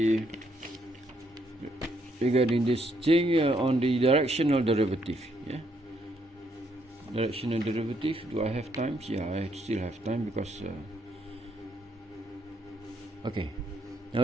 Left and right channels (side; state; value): both; normal; correlation 0.73